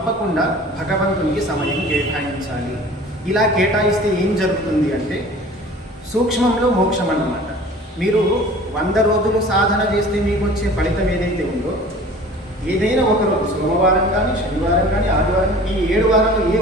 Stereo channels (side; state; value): both; normal; correlation 0.45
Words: భగవంతునికి సమయం కేటాయించాలి। ఇలా కేటాయిస్తే ఏం జరుగుతుంది అంటే సూక్ష్మంలో మోక్షం అన్నమాట। మీరు 100 రోజులు సాధన చేస్తే మీకు వచ్చే ఫలితం ఏదైతే ఉందో ఏదైనా ఒకరోజు, సోమవారం కానీ, శనివారం కానీ, ఆదివారం, ఈ 7 వారాలు ఏ